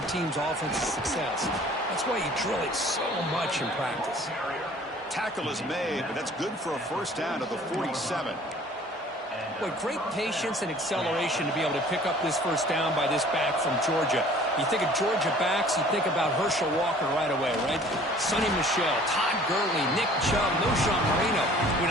team's offensive success. That's why you drill it so much in practice. Tackle is made, but that's good for a 1st down to the 47. Boy, great patience and acceleration to be able to pick up this 1st down by this back from Georgia. You think of Georgia backs, you think about Herschel Walker right away, right? Sonny Michel, Todd Gurley, Nick Chubb, Knowshon Moreno. I mean,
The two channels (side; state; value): both; normal; correlation 0.51